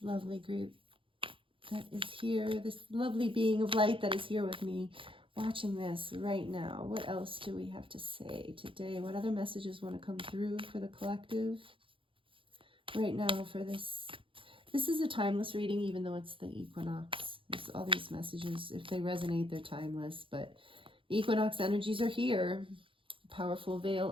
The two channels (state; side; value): late; left; 0.25 ms